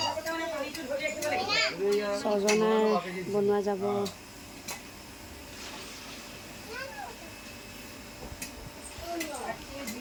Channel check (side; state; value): both; identical; correlation 1.00